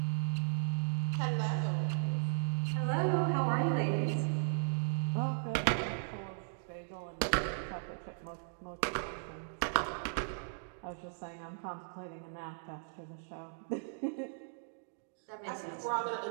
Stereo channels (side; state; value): left; silent; digital silence